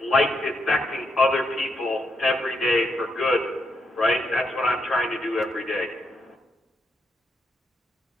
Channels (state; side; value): normal; both; correlation 0.80